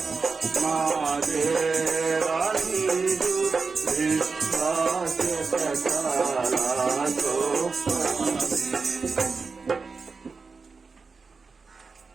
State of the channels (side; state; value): left; quieter; 4.6 dB